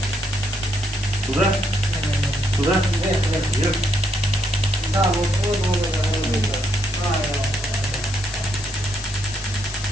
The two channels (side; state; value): left; noise; hiss, 11 dB below the sound